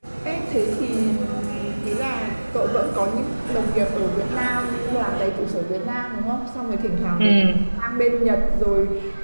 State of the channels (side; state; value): both; inverted; correlation -1.00